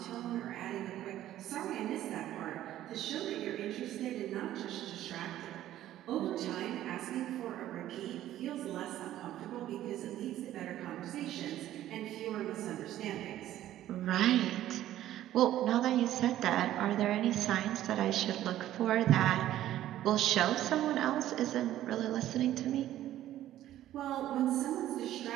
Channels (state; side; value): quieter; left; 13.1 dB